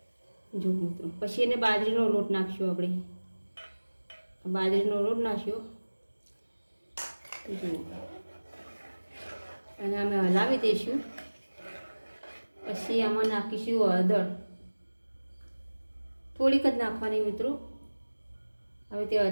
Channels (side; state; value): both; inverted; correlation -1.00